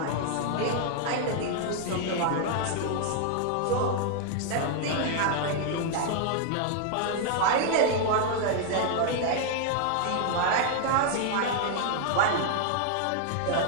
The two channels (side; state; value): both; different; correlation 0.00